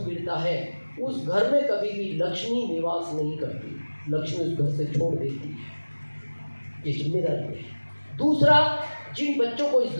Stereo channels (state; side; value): inverted; both; correlation -1.00